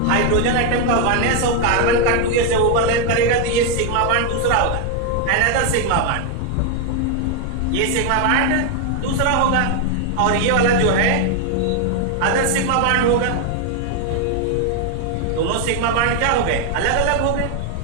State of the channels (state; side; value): different; both; correlation 0.01